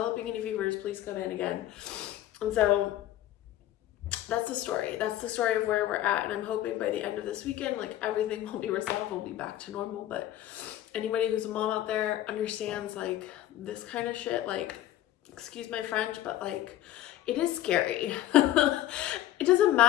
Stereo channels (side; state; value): right; quieter; 13.5 dB